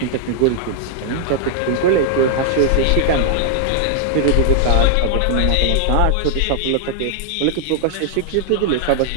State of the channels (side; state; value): both; different; correlation 0.00